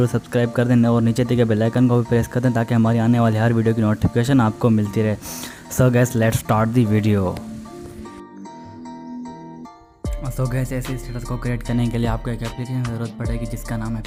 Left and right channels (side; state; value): both; identical; correlation 1.00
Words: सब्सक्राइब कर दें और नीचे दिए गए बेल आइकन को भी प्रेस कर दें ताकि हमारी आने वाली हर वीडियो की नोटिफिकेशन आपको मिलती रहे। So guys let's start the video. So gas ऐसे स्टेटस को क्रिएट करने के लिए आपको एक एप्लीकेशन की ज़रूरत पड़ेगी जिसका नाम है